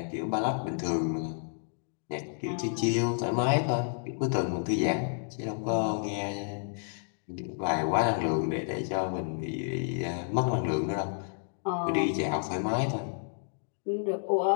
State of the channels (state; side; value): silent; right; digital silence